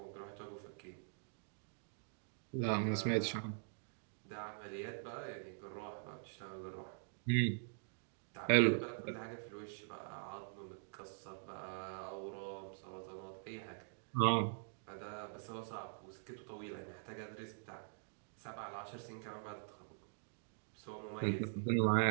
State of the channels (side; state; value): left; silent; digital silence